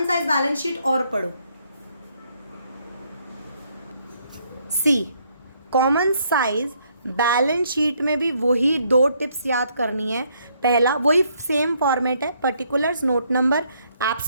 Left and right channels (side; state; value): both; inverted; correlation -0.70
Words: साइज बैलेंस शीट और पढ़ो। सी कॉमन साइज बैलेंस शीट में भी वही 2 टिप्स याद करनी है। पहला वही सेम फॉर्मेट है, particulars, note number,